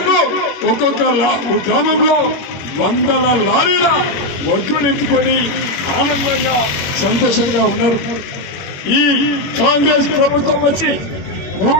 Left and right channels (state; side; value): late; right; 21 ms